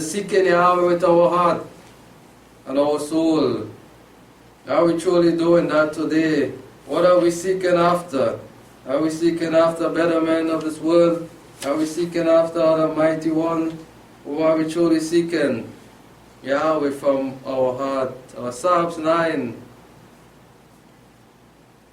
seeking Yahweh with our heart and our soul. Are we truly doing that today? What are we seeking after? Are we seeking after better men of this world? Are we seeking after the Mighty One? Or are we truly seeking Yahweh from our heart? Psalms 9,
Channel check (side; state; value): both; identical; correlation 1.00